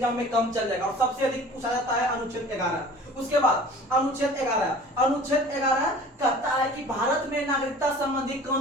में कम चल जाएगा। और सबसे अधिक पूछा जाता है अनुच्छेद 11। उसके बाद अनुच्छेद 11 कहता है कि भारत में नागरिकता संबंधी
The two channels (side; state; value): both; normal; correlation 0.44